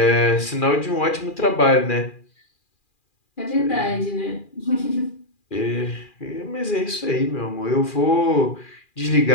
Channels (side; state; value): right; late; 2.4 ms